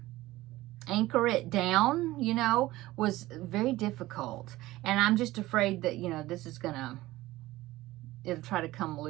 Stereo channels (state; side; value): quieter; left; 17.6 dB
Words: anchor it down, was very difficult. And I'm just afraid that, this is it'll try to come